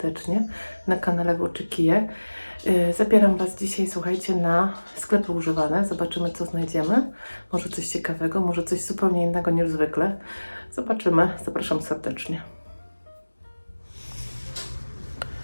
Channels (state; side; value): inverted; both; correlation -1.00